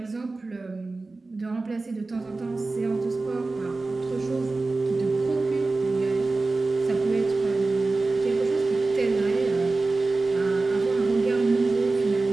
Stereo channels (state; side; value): quieter; left; 3.5 dB